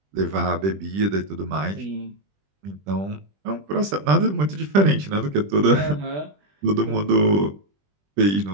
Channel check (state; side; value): late; left; 20 ms